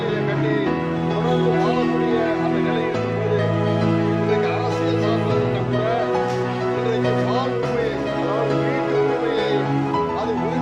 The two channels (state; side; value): identical; both; correlation 1.00